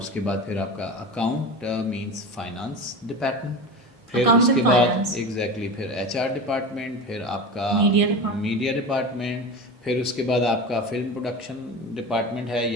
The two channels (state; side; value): normal; both; correlation 0.28